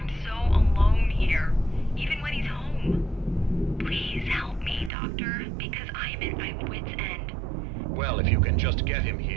so alone here, even when he's home. Please help me, Doctor, because I'm at my wit's end. Well, if you can just get him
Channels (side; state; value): left; drops out; at 4.9 s